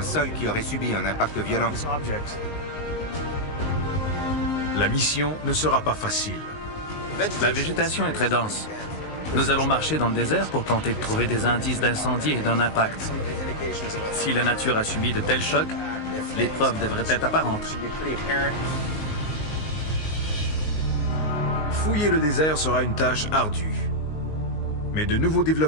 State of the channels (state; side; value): late; right; 19 ms